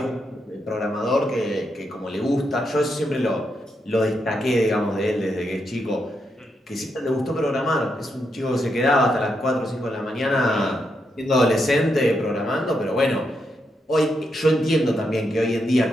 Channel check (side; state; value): both; normal; correlation 0.82